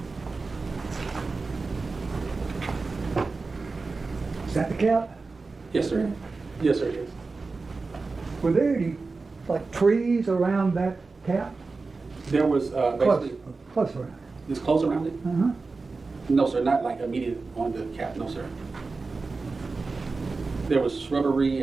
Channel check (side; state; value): left; quieter; 4.0 dB